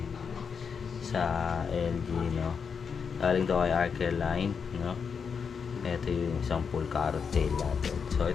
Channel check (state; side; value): quieter; right; 6.2 dB